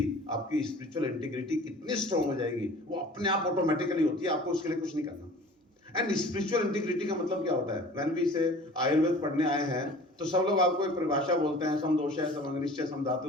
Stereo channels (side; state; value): both; normal; correlation 0.45